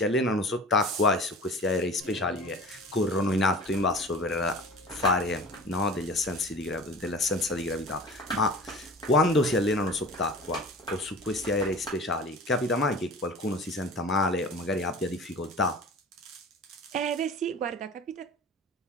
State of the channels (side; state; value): both; normal; correlation 0.39